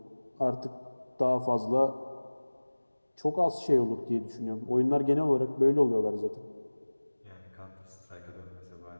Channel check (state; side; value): inverted; both; correlation -1.00